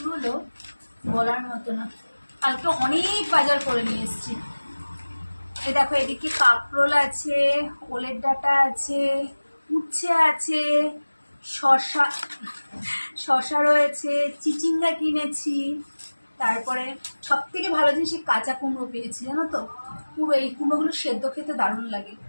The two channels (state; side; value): inverted; both; correlation -1.00